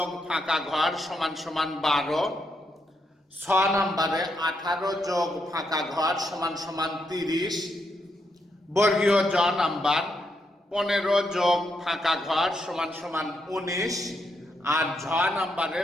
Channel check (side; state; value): both; normal; correlation 0.80